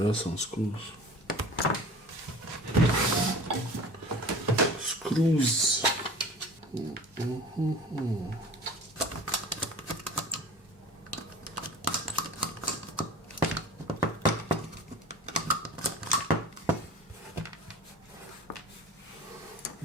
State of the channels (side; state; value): both; normal; correlation 0.40